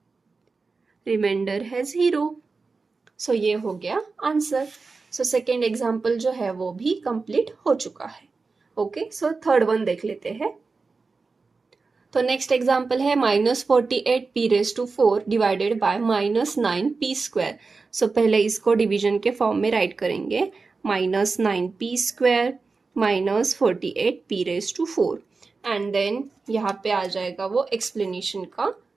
रिमाइंडर है 0। सो ये हो गया आंसर। सो सेकेंड एग्जाम्पल जो है वो भी कंप्लीट हो चुका है। ओके, सो थर्ड वन देख लेते हैं। तो नेक्स्ट एग्जाम्पल है -48p⁴ डिवाइडेड बाय -9p²। सो पहले इसको डिवीजन के फॉर्म में राइट करेंगे, -9p² -48p⁴, एंड देन यहाँ पे आ जाएगा वो एक्सप्लेनेशन का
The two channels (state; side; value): quieter; left; 4.2 dB